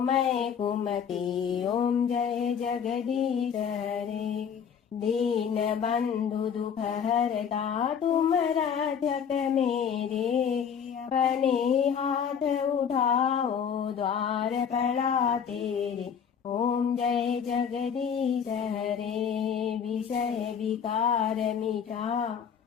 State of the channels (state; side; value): quieter; right; 7.5 dB